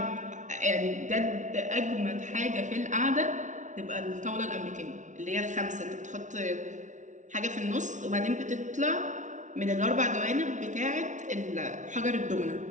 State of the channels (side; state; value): left; late; 0.36 ms